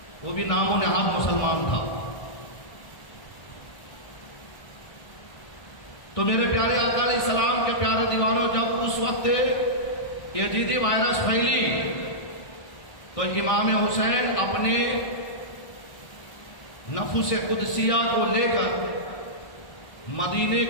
وہ بھی نام و نہاد مسلمان تھا۔ تو میرے پیارے آقا علیہ السلام کے پیارے دیوانوں، جب اس وقت یزیدی وائرس پھیلی تو امام حسین اپنے نفس قدسیہ کو لے کر مدینے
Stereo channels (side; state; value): right; late; 1.4 ms